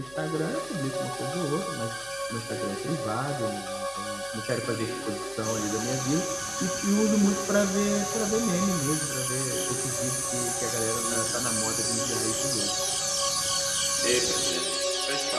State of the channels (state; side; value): noise; left; hum, 25 dB below the sound